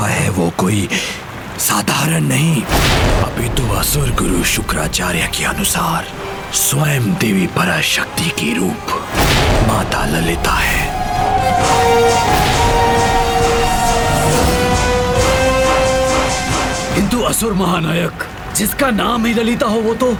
है वो कोई साधारण नहीं, अपितु असुर गुरु शुक्राचार्य के अनुसार स्वयं देवी पराशक्ति की रूप माता ललिता है। किंतु असुर महानायक, जिसका नाम ही ललिता हो वो तो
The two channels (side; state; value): both; identical; correlation 1.00